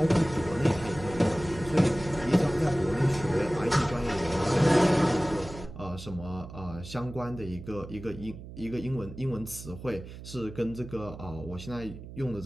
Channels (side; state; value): right; noise; hum, 13 dB below the sound